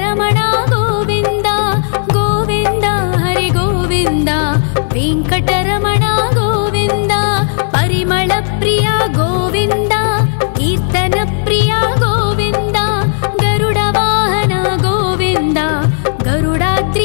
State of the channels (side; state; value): right; silent; digital silence